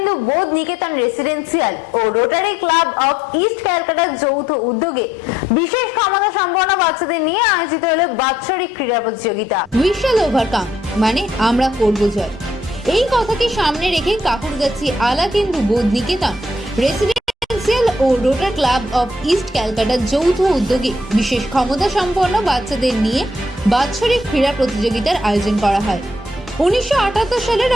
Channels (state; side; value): normal; both; correlation 0.69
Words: Bodh Niketan residential ও Rotary Club of East ক্যালকাটার যৌথ উদ্যোগে বিশেষ ক্ষমতা সম্পন্ন বাচ্চাদের নিয়ে আয়োজিত হলো বাৎসরিক ক্রীড়া প্রতিযোগিতা। উই শ্যাল ওভারকাম মানে আমরা করব জয়। এই কথাকে সামনে রেখে কাকুরগাছি আলাকেন্দু বোধ নিকেতন রেসিডেন্সিয়াল ও রোটারি ক্লাব অফ ইস্ট ক্যালকাটার যৌথ উদ্যোগে বিশেষ ক্ষমতা সম্পন্ন বাচ্চাদের নিয়ে বাৎসরিক ক্রীড়া প্রতিযোগিতার আয়োজন করা হয়। 1978 সালে